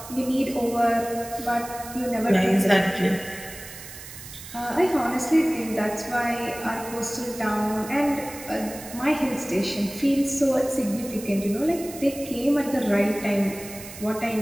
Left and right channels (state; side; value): noise; right; hiss, 14 dB below the sound